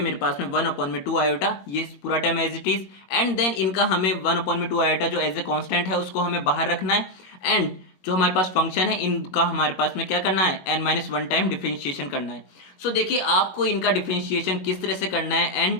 मेरे पास में 1/2 आयोटा, ये पूरा term as it is, and then इनका हमें 1/2 आयोटा जो एज ए कांस्टेंट है उसको हमें बाहर रखना है, एंड जो हमारे पास फंक्शन है इनका हमारे पास में क्या करना है, n-1 टाइम डिफरेंशिएशन करना है। सो देखिए आपको इनका डिफरेंशिएशन किस तरह से करना है,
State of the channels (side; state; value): right; late; 21 ms